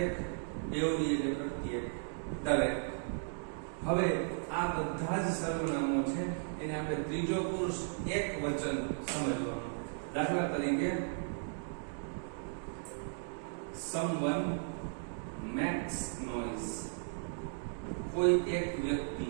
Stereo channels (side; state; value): left; silent; digital silence